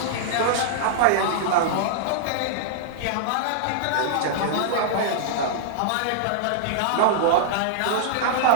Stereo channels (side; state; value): both; different; correlation -0.01